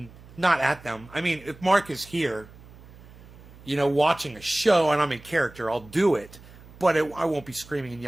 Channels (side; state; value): right; noise; hum, 21 dB below the sound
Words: not at them. I mean, if Mark is here, you know, watching a show and I'm in character, I'll do it. But I won't be screaming and